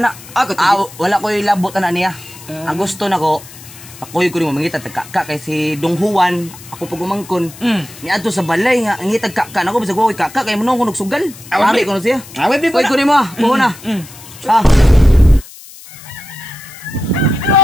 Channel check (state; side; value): noise; left; hiss, 18 dB below the sound